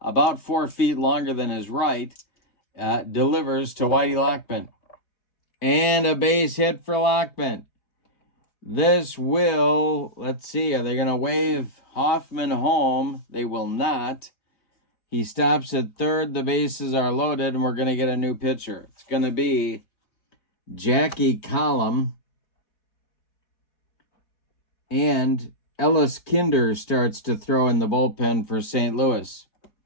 about 4 feet longer than his right, delivers to Whitey Lockman. And a base hit for Lockman. This will, let's see, are they going to wave Hoffman home? They will not. He stops at third. The bases are loaded, and we're going to get a new pitcher. It's going to be Jackie Collum. And Ellis Kinder starts to throw in the bullpen for St. Louis.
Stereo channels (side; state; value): right; late; 3.9 ms